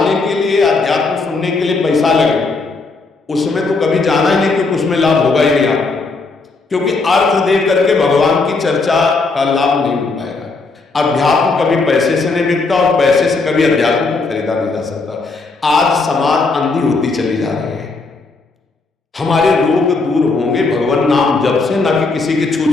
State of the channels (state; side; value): quieter; right; 3.8 dB